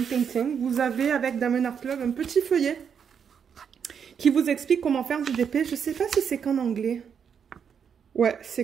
Painting, vous avez avec Diamond Art Club un petit feuillet qui vous explique comment faire du DP. Je sais pas si c'est qu'en anglais. Ouais,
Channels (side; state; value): left; quieter; 7.3 dB